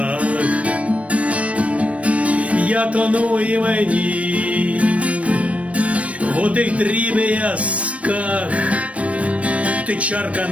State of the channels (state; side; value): late; left; 0.064 ms